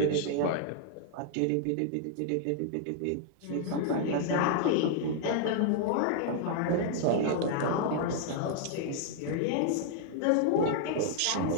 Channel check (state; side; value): different; both; correlation -0.01